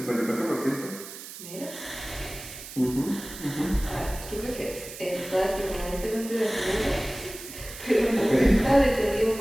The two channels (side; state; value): right; noise; hiss, 13 dB below the sound